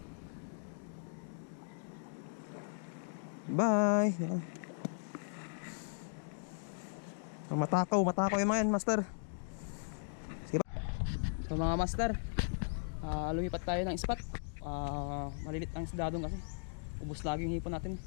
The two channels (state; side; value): silent; right; digital silence